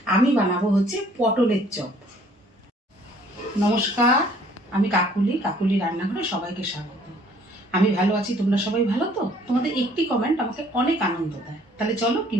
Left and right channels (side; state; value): both; normal; correlation 0.59